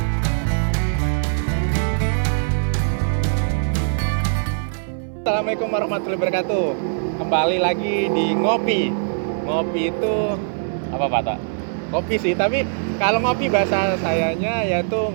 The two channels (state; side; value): silent; left; 58 dB below the other